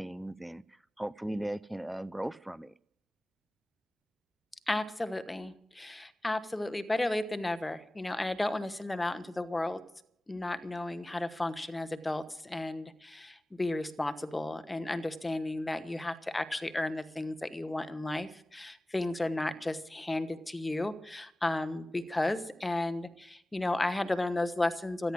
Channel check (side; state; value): both; normal; correlation 0.97